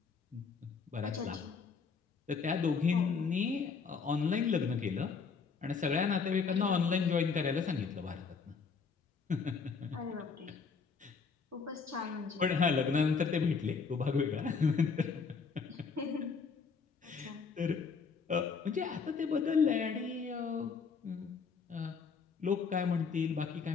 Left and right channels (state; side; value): quieter; right; 5.4 dB